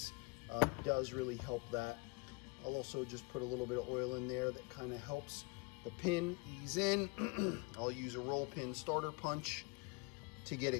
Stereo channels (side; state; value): right; quieter; 30.3 dB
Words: does really help that. I'll also just put a little bit of oil in there that kind of helps the pin ease in. I'll use a roll pin starter punch to get